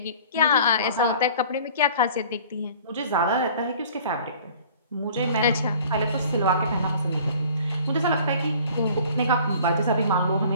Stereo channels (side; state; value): both; inverted; correlation -0.49